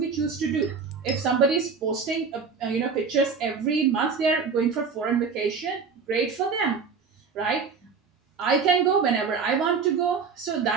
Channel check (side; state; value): left; quieter; 5.4 dB